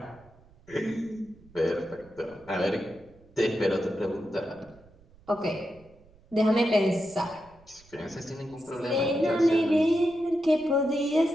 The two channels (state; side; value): noise; right; rumble, 27 dB below the sound